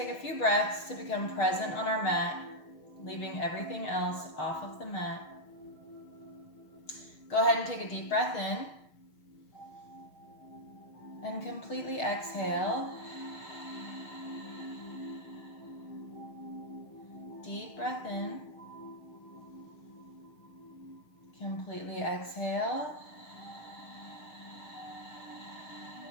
a few breaths to become present on our mat, leaving everything else off of the mat. Go ahead and take a deep breath in. And completely exhale. Deep breath in. Completely exhale.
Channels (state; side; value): late; right; 6.5 ms